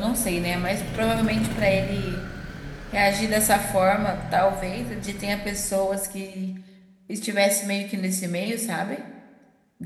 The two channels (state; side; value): identical; both; correlation 1.00